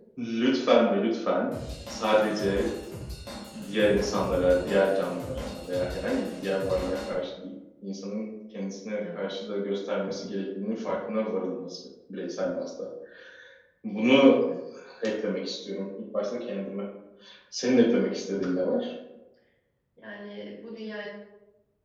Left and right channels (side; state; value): both; identical; correlation 1.00